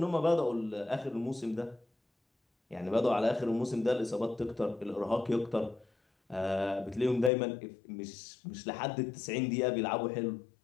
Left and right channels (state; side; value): drops out; right; at 7.3 s